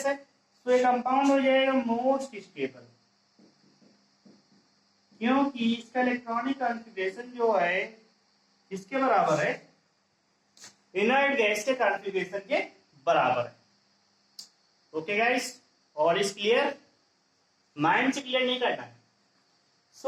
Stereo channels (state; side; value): identical; both; correlation 1.00